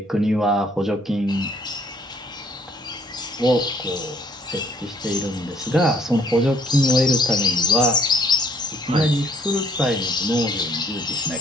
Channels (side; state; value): both; normal; correlation 0.63